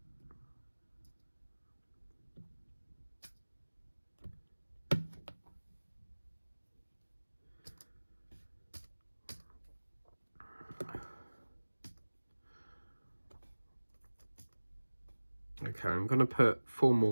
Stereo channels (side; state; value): both; inverted; correlation -1.00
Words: Okay, I'm going to put 4